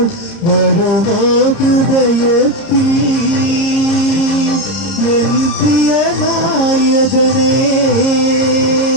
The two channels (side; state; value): right; late; 30 ms